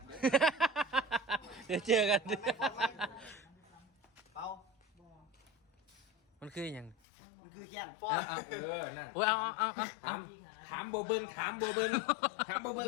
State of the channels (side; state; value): right; drops out; at 7.0 s